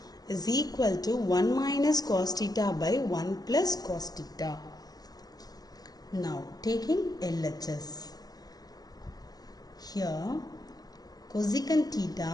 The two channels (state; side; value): late; right; 0.19 ms